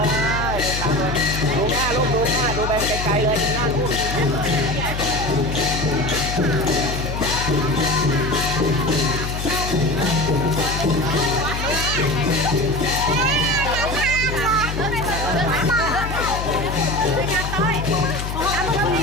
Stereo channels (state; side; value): noise; left; hum, 5 dB below the sound